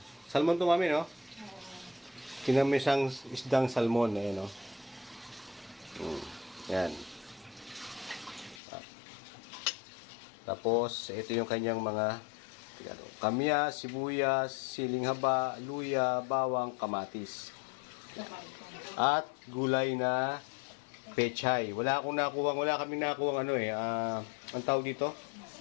Salmon to mami, no? Kinamyasang isdang salmon. Ayan, no? Yan. Tapos, ito yung kanyang mga kamyas, sibuyas, siling haba, luya, bawang, kamatis. At gulay na pechay. Wala kaming nakuha ang tawag dito?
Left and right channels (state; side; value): drops out; right; at 8.6 s